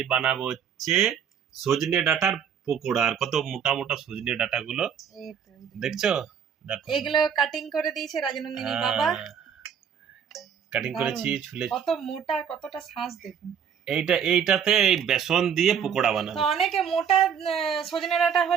বানাবো হচ্ছে সজনে ডাঁটার পকোড়া। আর কত মোটা মোটা সজনে ডাঁটা গুলো দেখছো, দেখো এগুলো কাটিং করে দিয়েছে রাজনন্দিনী বাবা। কাটিং করেছি, ছুলে কত মোটা, কতটা শাঁস দেখুন। এইটাতে এই বেসন দিয়ে পকোড়া বানাবো। তো অনেকে মোটা সজনে ডাঁটা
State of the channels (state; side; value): quieter; left; 7.7 dB